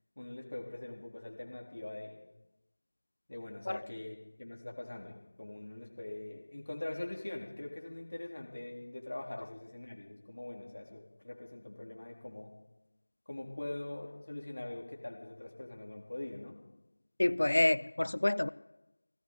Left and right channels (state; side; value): inverted; both; correlation -1.00